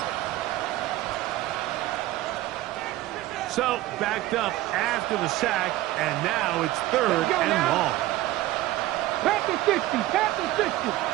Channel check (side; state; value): left; quieter; 16.1 dB